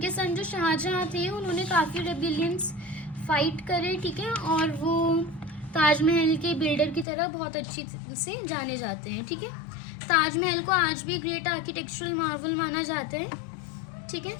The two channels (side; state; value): right; drops out; at 7.1 s